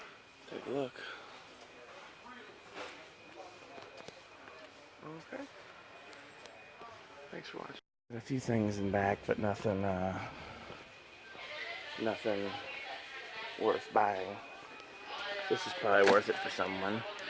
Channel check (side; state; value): both; identical; correlation 1.00